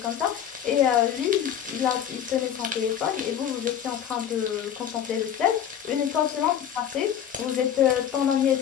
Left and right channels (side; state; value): right; quieter; 9.4 dB